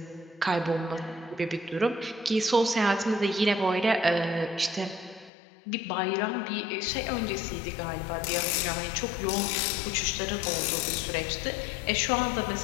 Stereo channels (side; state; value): right; drops out; at 5.3 s